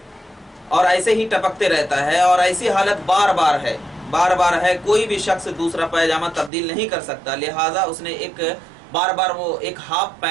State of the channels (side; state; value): left; drops out; at 6.5 s